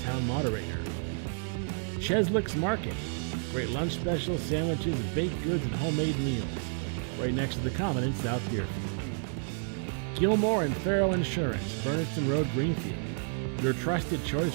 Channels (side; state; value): left; silent; 58 dB below the other